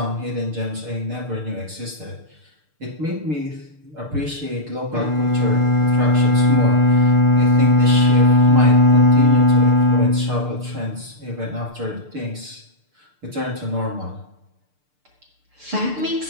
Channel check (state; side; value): late; left; 6.7 ms